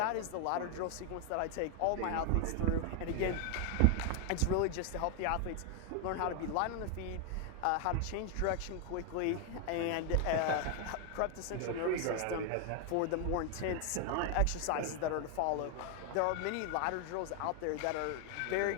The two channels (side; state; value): both; different; correlation 0.00